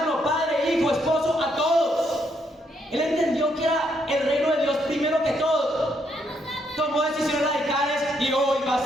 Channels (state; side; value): normal; both; correlation 0.74